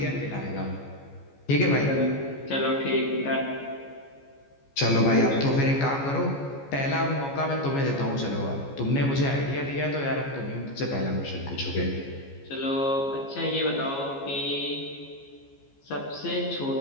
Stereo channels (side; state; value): right; late; 14 ms